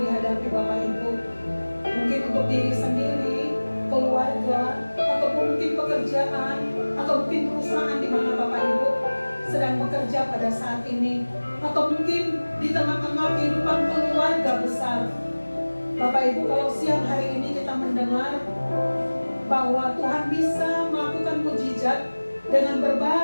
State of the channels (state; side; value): inverted; both; correlation -1.00